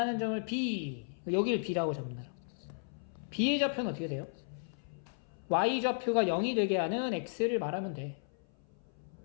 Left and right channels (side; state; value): right; silent; 55 dB below the other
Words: 점을 B. 여기를 B라고 잡는다. B의 좌표는 어떻게 돼요? Y 좌표가 0이 되게 하는 X를 말하면 돼.